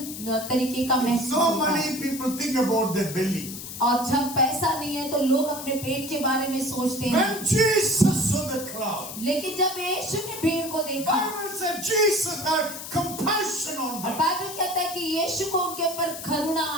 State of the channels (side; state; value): left; noise; hiss, 10 dB below the sound